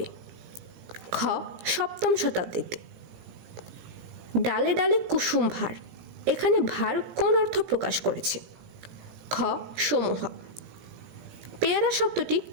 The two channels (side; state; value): left; late; 17 ms